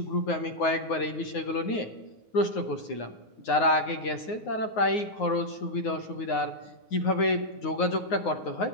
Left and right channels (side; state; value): right; late; 9.5 ms